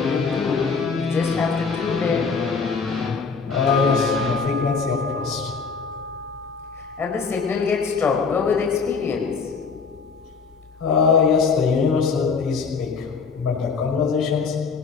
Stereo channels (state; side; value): quieter; right; 5.1 dB